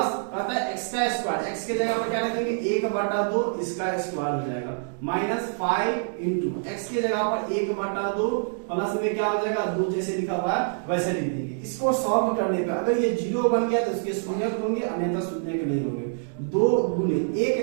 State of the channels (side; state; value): left; silent; digital silence